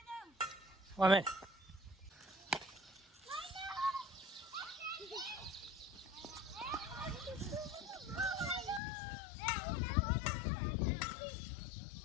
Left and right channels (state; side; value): drops out; right; at 8.8 s